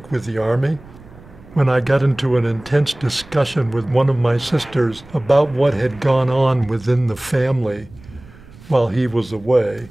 with the Army. When I got into an intense discussion with one of my sisters about what had gone on within the family while he was away,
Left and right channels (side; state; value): right; noise; rumble, 22 dB below the sound